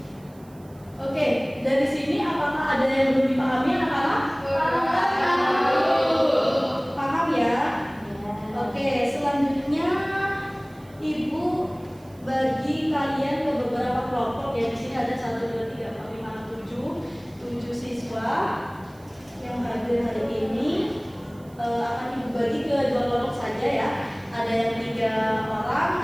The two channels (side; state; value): right; noise; hiss, 29 dB below the sound